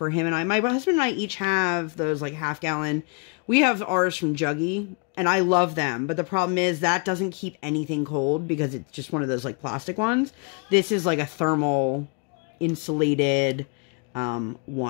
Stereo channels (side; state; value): right; quieter; 34.7 dB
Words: him and I. My husband and I each have those like half-gallon. We have ours from Juggy, and I love them. But the problem is that doesn't keep anything cold because it's just one of those like plastic ones. This is like a thermal insulated